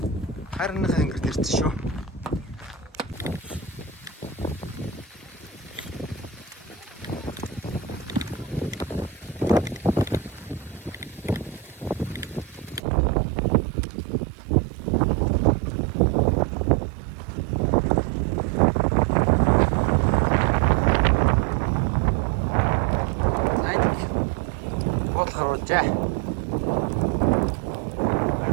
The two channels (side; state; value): left; drops out; at 12.8 s